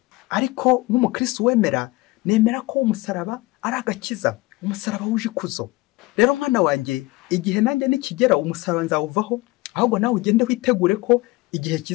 Ariko nk'umukristo wemera, nemera ko umusaraba ari agakiza, umusaraba wuje ikuzo. Rero mwana wanjye, igihe nanjye nikigera umusaraba nzawuvaho, ahubwo nawe ugende witegure ko igihe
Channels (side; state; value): right; quieter; 21.4 dB